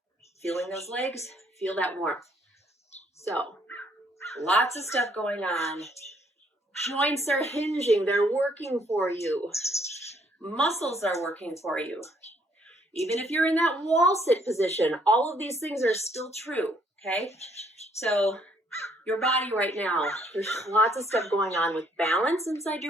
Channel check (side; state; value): both; normal; correlation 0.67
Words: feeling those legs, feel that warmth. So, lots of stuff going on. Joints are hinging, they're working for you. Muscles are working for you. Even if you're in that wall sit position, all of these things are still true, okay? So, your body right now, there's lots of stuff going on with balance inside